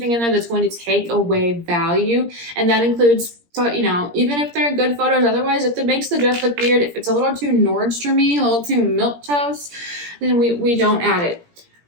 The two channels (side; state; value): left; late; 17 ms